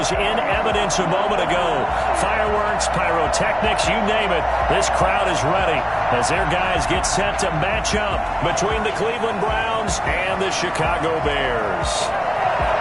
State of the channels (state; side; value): identical; both; correlation 1.00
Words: in evidence a moment ago. Fireworks, pyrotechnics, you name it. This crowd is ready as their guys get set to match up between the Cleveland Browns and the Chicago Bears.